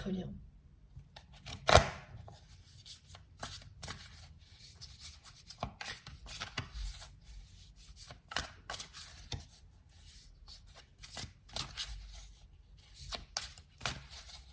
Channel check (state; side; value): identical; both; correlation 1.00